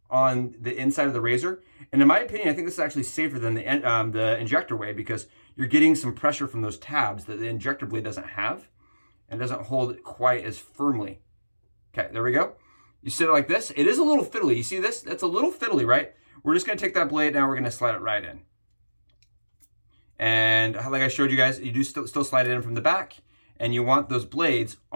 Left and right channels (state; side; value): inverted; both; correlation -1.00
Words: on the inside of the razor. And in my opinion, I think this is actually safer than the injector way, because you're getting some pressure from those tabs that the injector blade doesn't have and doesn't hold it quite as firmly. Okay, there we go. You sit it like this. It is a little fiddly. You see this? That's a little fiddly, right? We're just going to take that blade. Now we're going to slide it right in. And like I showed you guys, you do still slide it in from the back. And you want those blades